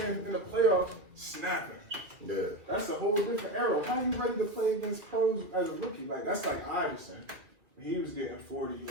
in the playoff snapping. Yeah. That's a whole different era. How you ready to play against pros as a rookie? Like that's like Iverson. He was getting 40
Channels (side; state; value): left; late; 2.5 ms